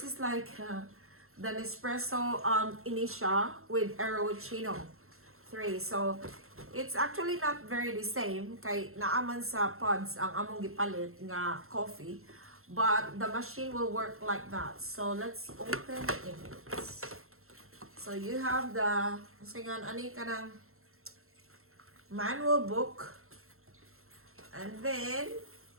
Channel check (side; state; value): left; late; 0.62 ms